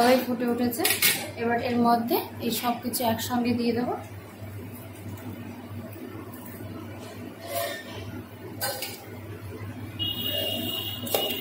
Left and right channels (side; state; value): both; identical; correlation 1.00